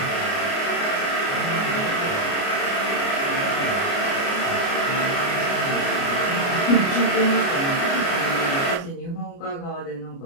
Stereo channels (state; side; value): late; right; 29 ms